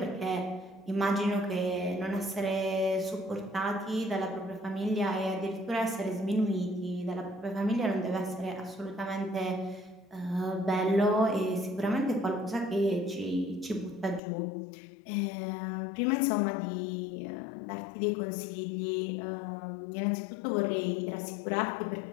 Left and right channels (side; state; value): right; drops out; at 14.2 s